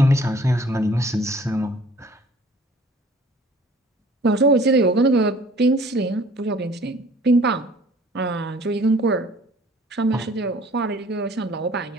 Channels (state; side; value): normal; both; correlation 0.53